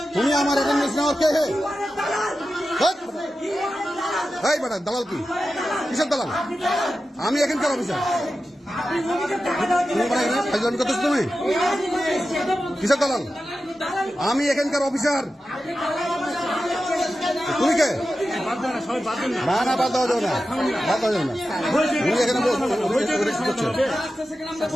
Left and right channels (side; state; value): both; normal; correlation 0.92